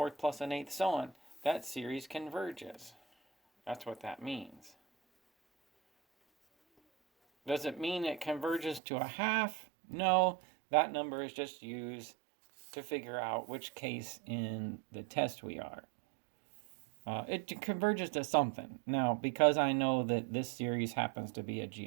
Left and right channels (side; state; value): left; drops out; at 8.8 s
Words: plus an eighth, so on, that series converges. That's what that means. Does it mean it converges to a half? No, that number is just used to figure out which case in the test we are. It converges to something. Now, because I know that this series happens to be a